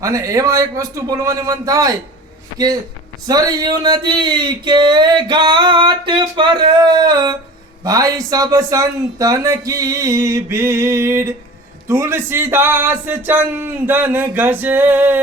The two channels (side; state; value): both; normal; correlation 0.39